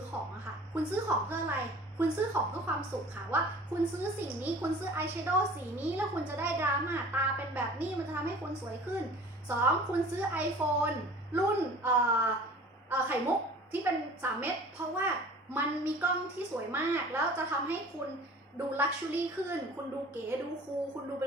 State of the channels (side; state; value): both; normal; correlation 0.45